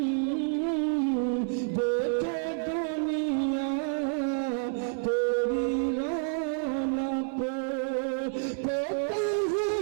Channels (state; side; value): silent; left; 59 dB below the other